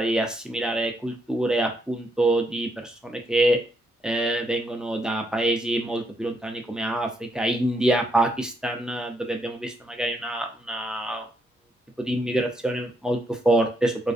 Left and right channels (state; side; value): normal; both; correlation 0.76